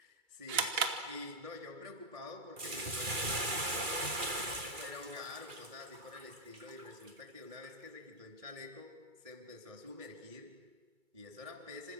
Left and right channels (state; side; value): late; left; 2.3 ms